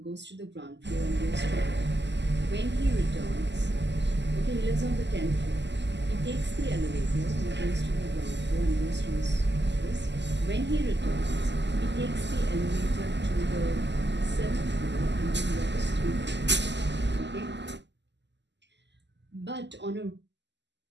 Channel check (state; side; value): late; left; 0.51 ms